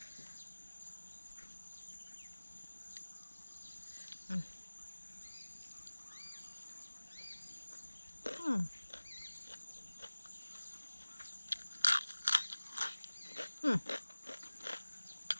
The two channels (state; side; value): inverted; both; correlation -1.00